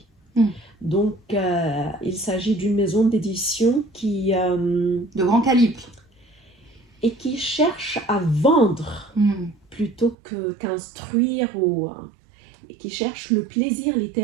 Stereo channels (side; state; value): left; drops out; at 10.2 s